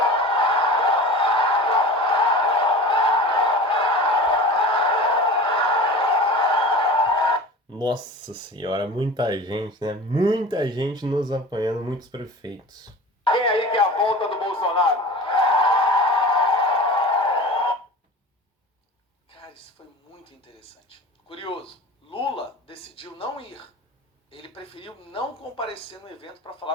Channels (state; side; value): normal; both; correlation 0.36